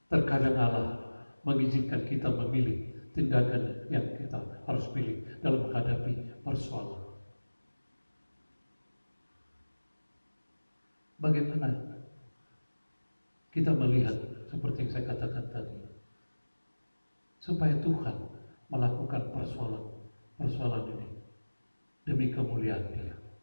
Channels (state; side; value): inverted; both; correlation -1.00